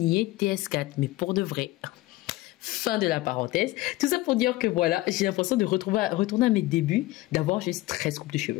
TS4, mais pour de vrai. Fin de la parenthèse. Tout ça pour dire que voilà, j'ai l'impression de retourner à mes débuts, d'avoir juste 13 coupes de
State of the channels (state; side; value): quieter; right; 18.1 dB